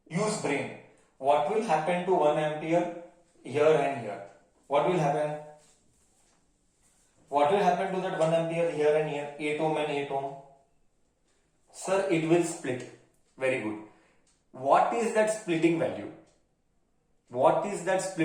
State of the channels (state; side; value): identical; both; correlation 1.00